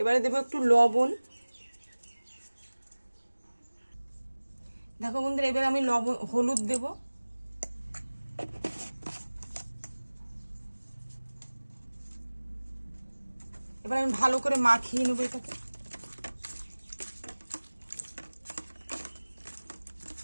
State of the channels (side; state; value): both; inverted; correlation -1.00